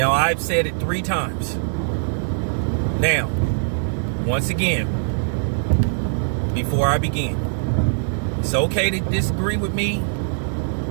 I've said it 3 times. Now, once again, before I begin, it's okay to disagree with me.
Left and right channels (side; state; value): left; silent; digital silence